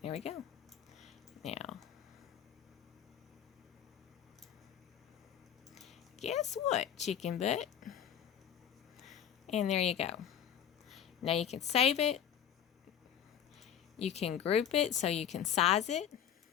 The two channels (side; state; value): right; quieter; 9.2 dB